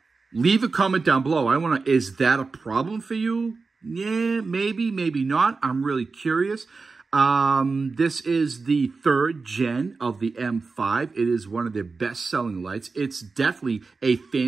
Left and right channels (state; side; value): quieter; left; 4.3 dB